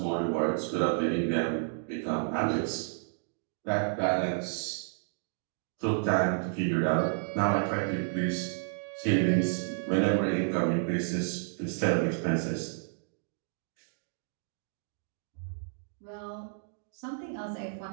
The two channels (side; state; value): left; silent; digital silence